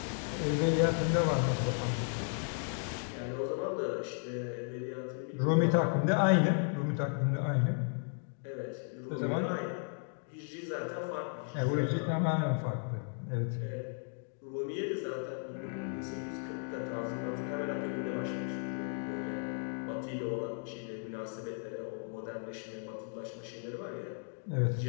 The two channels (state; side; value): silent; right; 54 dB below the other